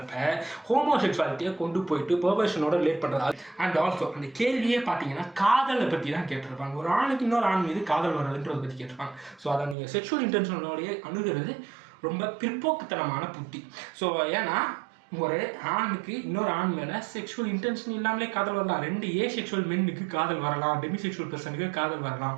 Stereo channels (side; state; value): left; drops out; at 9.8 s